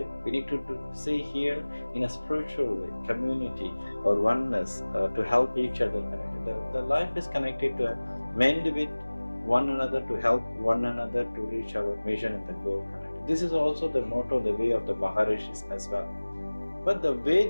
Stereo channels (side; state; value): both; inverted; correlation -1.00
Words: We need to see here in a spiritual way, community or oneness to help each other connected. The life is connected to mend with one another, to help one another to reach our mission and the goal connected. This is also the motto, the way of the Maharishis as well. But the way